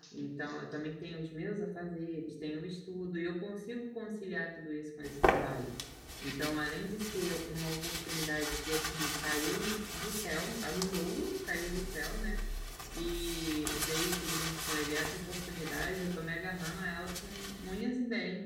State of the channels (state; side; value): identical; both; correlation 1.00